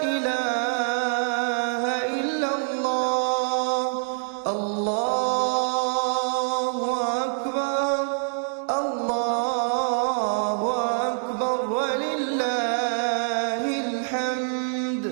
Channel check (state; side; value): silent; left; digital silence